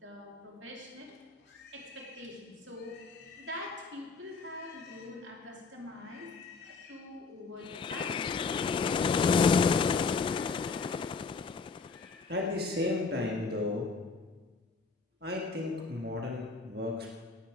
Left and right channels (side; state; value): right; quieter; 4.6 dB